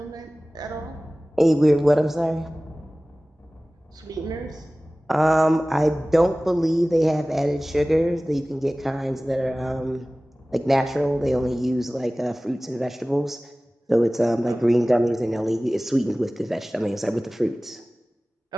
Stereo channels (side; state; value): both; normal; correlation 0.98